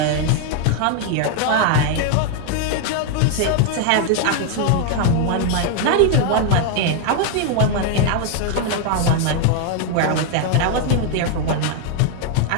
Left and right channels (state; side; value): different; both; correlation 0.00